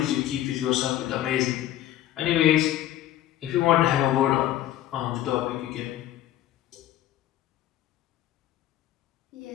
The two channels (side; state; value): right; quieter; 13.1 dB